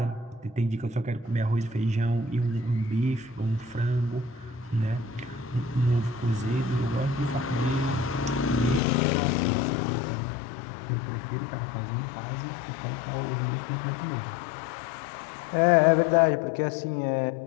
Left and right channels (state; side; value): drops out; right; at 8.8 s